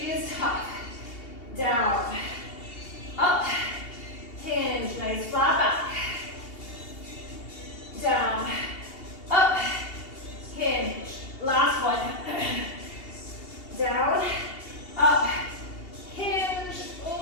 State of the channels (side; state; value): right; late; 2.8 ms